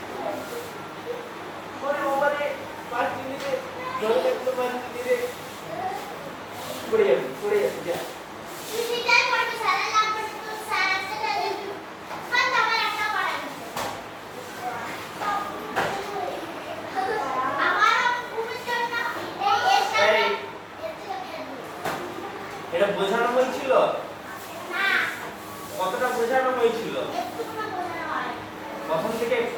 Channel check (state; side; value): identical; both; correlation 1.00